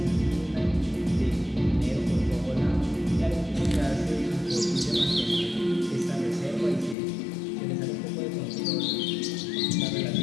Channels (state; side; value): drops out; right; at 7.0 s